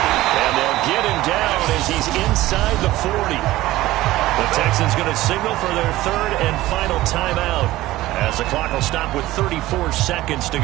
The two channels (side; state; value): left; quieter; 16.7 dB